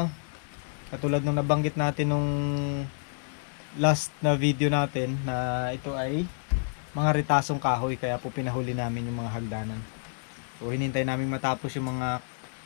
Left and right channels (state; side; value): silent; right; digital silence